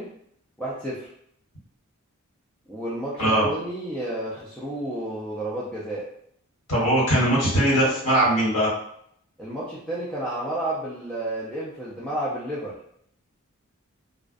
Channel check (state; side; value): normal; both; correlation 0.33